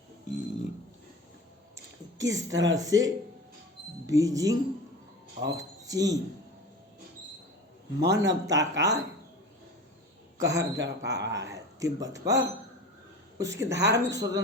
किस तरह से बीजिंग और चीन मानवता का कहर बरपा रहा है तिब्बत पर। उसकी धार्मिक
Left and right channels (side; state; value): both; normal; correlation 0.34